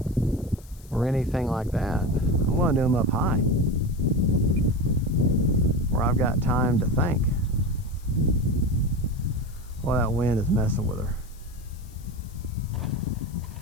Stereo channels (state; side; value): noise; left; hiss, 25 dB below the sound